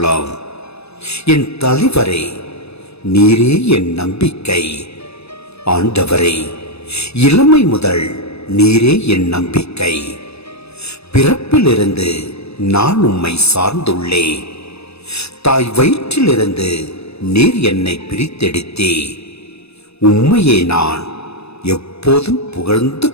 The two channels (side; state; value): right; late; 0.79 ms